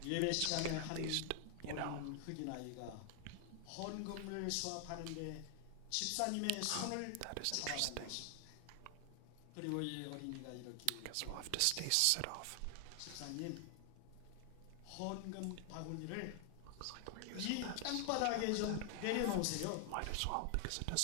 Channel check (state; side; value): different; both; correlation 0.00